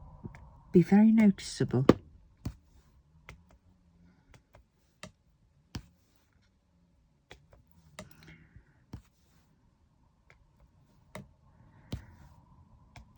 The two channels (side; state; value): both; identical; correlation 1.00